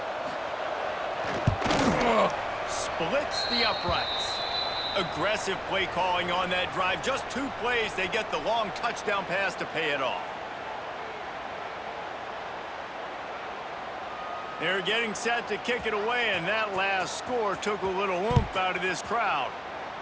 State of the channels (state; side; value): identical; both; correlation 1.00